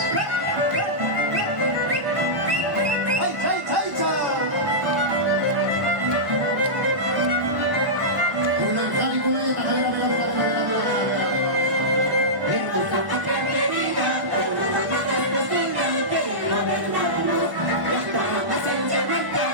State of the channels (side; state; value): left; late; 1.1 ms